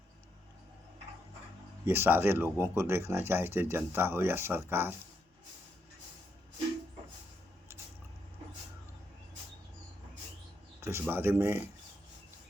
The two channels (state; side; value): normal; both; correlation 0.79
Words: ये सारे लोगों को देखना चाहिए, चाहे जनता हो या सरकार। तो इस बारे में